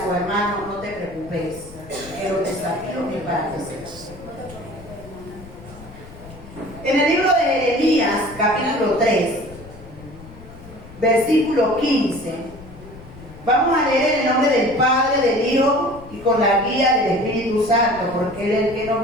su hermano, no te preocupes, que los desafíos es para crecer. En el libro de Jeremías, capítulo 3, versículo 15, vamos a leer en el nombre del Padre, del Hijo y con la guía del Espíritu Santo, porque Él es el que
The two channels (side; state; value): left; noise; rumble, 18 dB below the sound